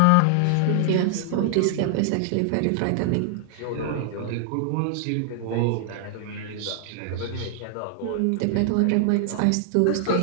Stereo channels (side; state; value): both; different; correlation 0.00